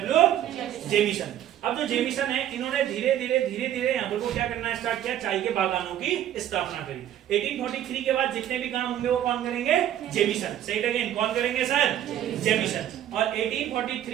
Jameson. अब जो जेमिसन है इन्होंने धीरे धीरे यहाँ पर को क्या करना स्टार्ट किया, चाय के बागानों की स्थापना करी। 1843 के बाद जितने भी काम होंगे वो कौन करेंगे? जेमिसन। से इट अगेन, कौन करेंगे सर? जेमिसन। और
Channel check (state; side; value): quieter; left; 11.5 dB